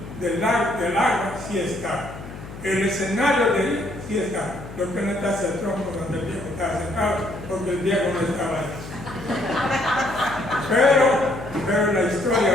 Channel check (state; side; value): noise; left; hum, 13 dB below the sound